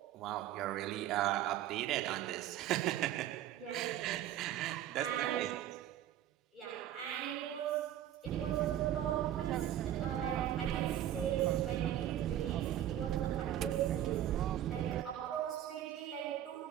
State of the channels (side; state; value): left; quieter; 12.0 dB